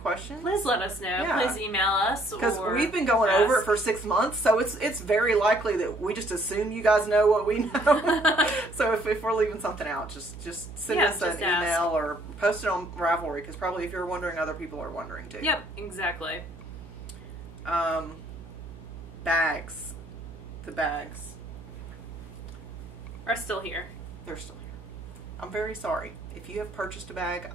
questions, please let us know. Yeah. Please email us. Because we've been going over it for 6 months, so it's very likely that we just assume you guys know what we know. So if we're leaving something out, just send us an email or post it on Ravelry, because probably if you're wondering, other people are wondering too. Yep, exactly. Bags. The bags are still here. They're still here. I'm very sorry. If you have purchased a bag,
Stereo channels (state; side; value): noise; right; hum, 14 dB below the sound